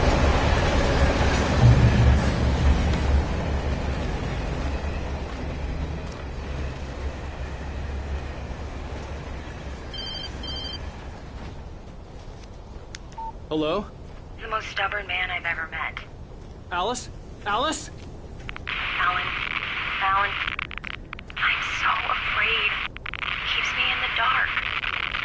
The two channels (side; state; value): both; identical; correlation 1.00